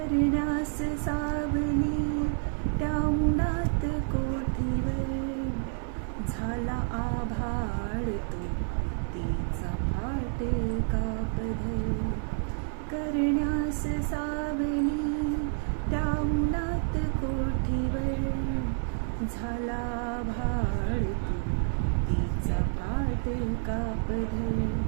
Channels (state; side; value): silent; left; 58 dB below the other